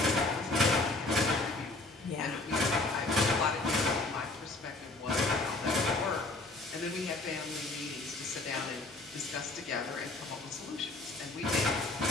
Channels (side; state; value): right; quieter; 3.1 dB